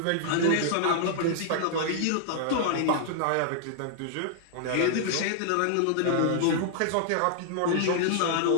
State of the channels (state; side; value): different; both; correlation -0.01